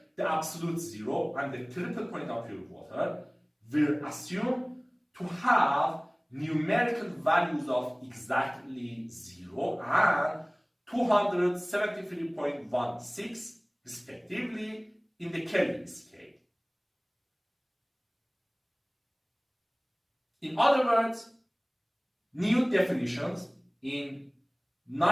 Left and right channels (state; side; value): identical; both; correlation 1.00